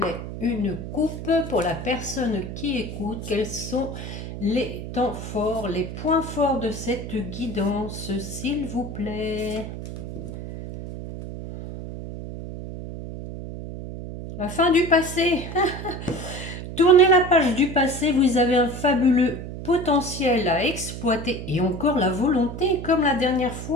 une coupe pour la personne qui écoute. Quels sont les temps forts, les points forts de cette guidance, s'il vous plaît? La fin du passé. Tournez la page du passé, vous avez un fabuleux potentiel à exploiter et encore la volonté comme la dernière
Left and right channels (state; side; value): noise; right; hum, 9 dB below the sound